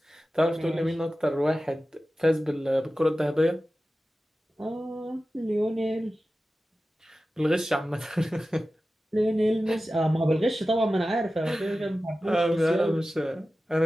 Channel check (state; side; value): normal; both; correlation 0.94